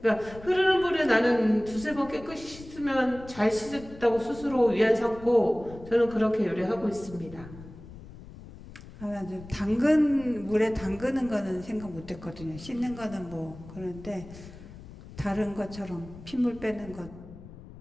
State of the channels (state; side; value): noise; left; rumble, 17 dB below the sound